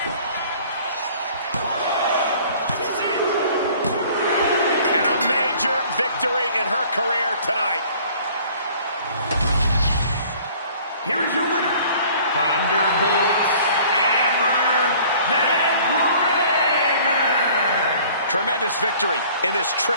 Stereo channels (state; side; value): inverted; both; correlation -0.52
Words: And a major victory in her career tonight. Here is your winner, Thunderbolt Amber McGregor. Tremendous victory in this